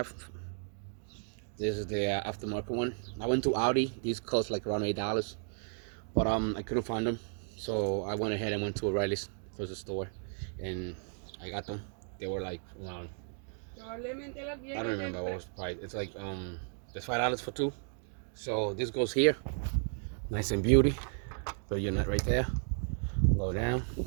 This is the aftermarket one. I went to Audi. These cost like around $8, but I couldn't find them, so I went ahead and went to O'Reilly's closest store, and I got them. They were like around, I don't remember what was the price. It's like there's $5 for two. So this goes here, nice and beauty. Put your nut right there. Go down,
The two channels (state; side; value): silent; left; 55 dB below the other